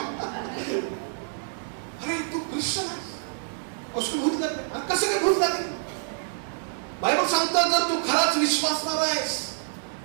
अरे तू ख्रिश्चन आहेस, असं भूत लागले. आणि कसं काय भूत लागले? बायबल सांगतात जर तू खराच विश्वासणार आहेस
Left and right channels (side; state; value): left; silent; 60 dB below the other